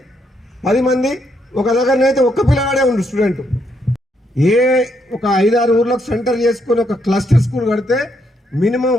10 మంది. ఒక దగ్గరనైతే ఒక్క పిల్లగాడే ఉండు స్టూడెంట్. ఒక 5-6 ఊర్లకు సెంటర్ చేసుకుని ఒక క్లస్టర్ స్కూల్ కడితే మినిమం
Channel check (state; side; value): normal; both; correlation 0.75